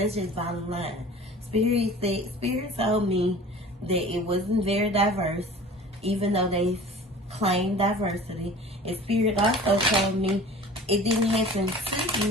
bottom line. Spirit told me that it wasn't very diverse, even though they claimed diversity. And Spirit also told me it didn't happen to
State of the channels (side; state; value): both; normal; correlation 0.42